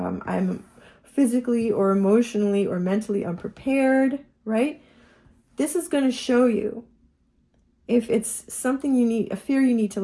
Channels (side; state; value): both; identical; correlation 1.00